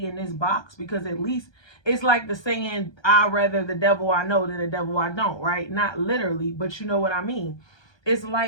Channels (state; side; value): late; right; 1.2 ms